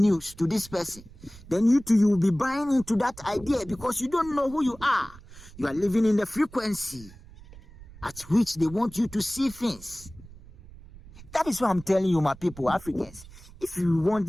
to this person. Then you will be buying into that idea because you don't know who you are. You are living in the frequency at which they want you to see things. That is why I'm telling you, my people, Africans, if you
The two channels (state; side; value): noise; right; rumble, 19 dB below the sound